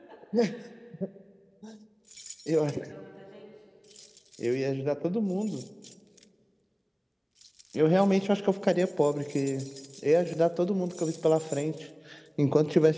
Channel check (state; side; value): identical; both; correlation 1.00